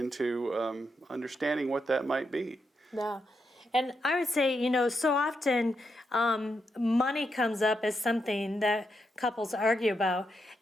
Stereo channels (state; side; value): normal; both; correlation 0.83